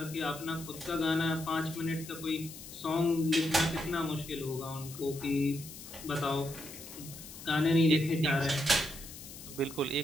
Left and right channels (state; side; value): noise; left; hiss, 14 dB below the sound